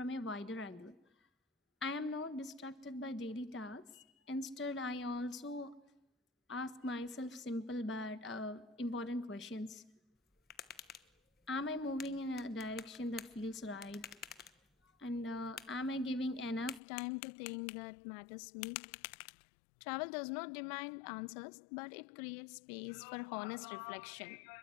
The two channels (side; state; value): right; drops out; at 16.8 s